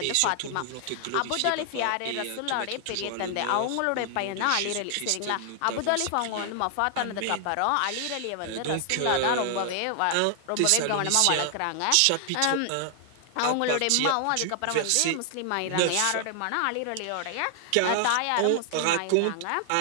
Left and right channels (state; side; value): different; both; correlation 0.00